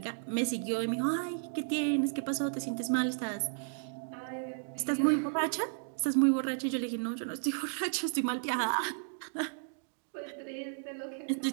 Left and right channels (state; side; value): silent; left; digital silence